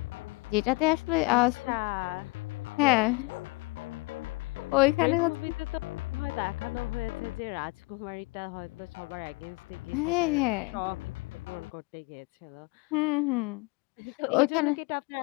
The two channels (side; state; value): right; quieter; 26.6 dB